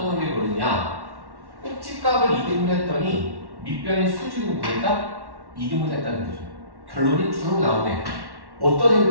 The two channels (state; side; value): late; left; 1.1 ms